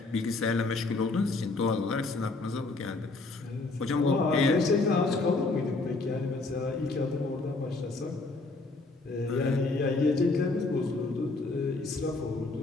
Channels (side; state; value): right; quieter; 3.5 dB